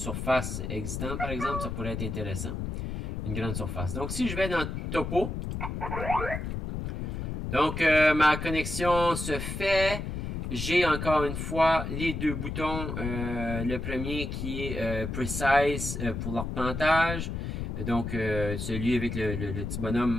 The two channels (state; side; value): noise; left; rumble, 4 dB below the sound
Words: existante, par exemple, ça pourrait être intéressant. Une grande surface. Donc, si je vais dans Topo, donc ma connexion se fait. J'ai encore une fois les deux boutons. Le premier qui est Precise pour l'arpentage. Donc, celui avec le petit